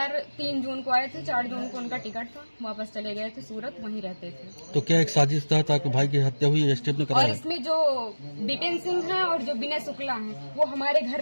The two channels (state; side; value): inverted; both; correlation -1.00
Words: 3 जून को आए थे, 4 जून को उनका टिकट था, वापस चले गए थे सूरत, वहीं रहते थे। तो क्या एक साजिश तहत आपके भाई की हत्या हुई है? स्टेप ने कराया? और इसमें जो विपिन सिंह है और जो विनय शुक्ला हैं, वो हमारे घर